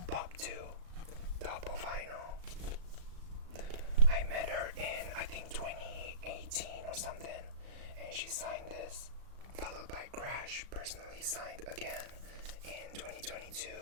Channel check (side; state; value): left; late; 36 ms